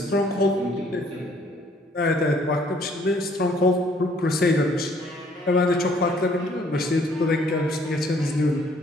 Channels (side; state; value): both; normal; correlation 0.62